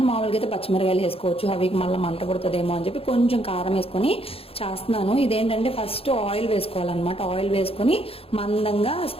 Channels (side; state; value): right; late; 0.28 ms